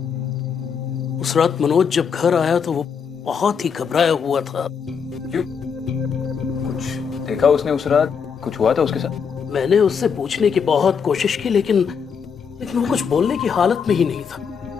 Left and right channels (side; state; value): right; quieter; 6.5 dB